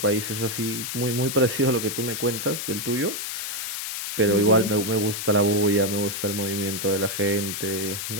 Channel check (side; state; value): left; noise; hiss, 4 dB below the sound